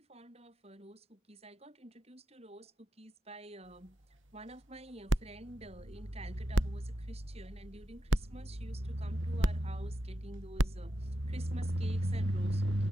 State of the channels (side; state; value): both; normal; correlation 0.89